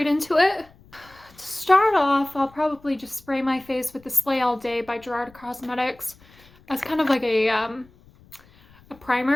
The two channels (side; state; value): left; noise; rumble, 27 dB below the sound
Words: into it. To start off, I'll probably just spray my face with the Slay All Day by Gerard Cosmetics as kind of like a